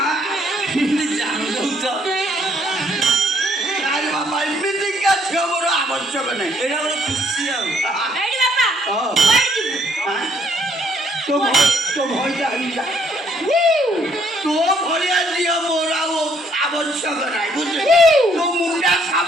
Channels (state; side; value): normal; both; correlation 0.66